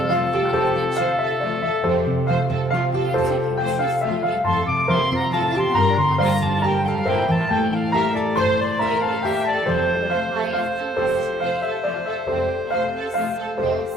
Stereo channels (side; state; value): both; normal; correlation 0.66